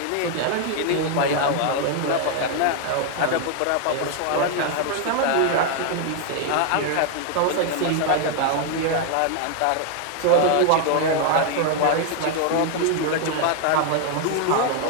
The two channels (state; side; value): different; both; correlation 0.00